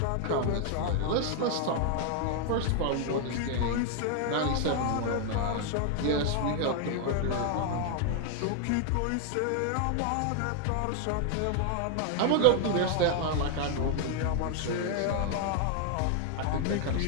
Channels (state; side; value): different; both; correlation 0.00